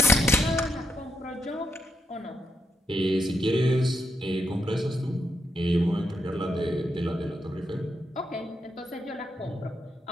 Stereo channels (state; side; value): normal; both; correlation 0.81